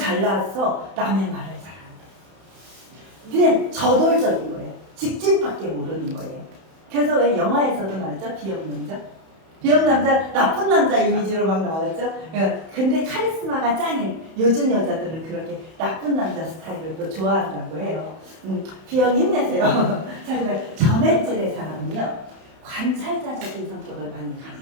남의 말을 잘 안 해. 그냥 저돌적인 거예요. 직진밖에 모르는 거예요. 그래서 왜 영화에서도 나왔죠? B형 남자? B형 남자, 나쁜 남자 이미지로 막 나왔죠? 근데 카리스마가 짱인 요즘 여자들은 그렇게 나쁜 남자 스타일을 또 좋아한다고 해요. B형 힘내세요. 자, 그러니까 점액질의 사람은요, 관찰자적인 성격을 많이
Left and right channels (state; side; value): late; left; 31 ms